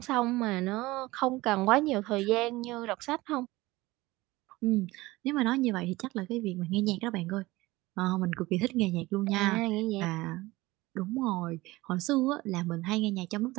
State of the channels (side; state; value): left; quieter; 19.9 dB